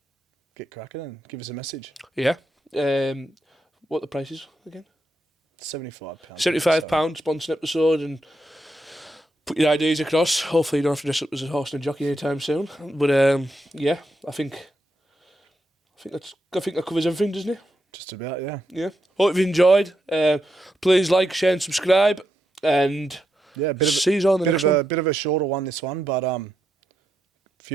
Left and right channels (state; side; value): normal; both; correlation 0.83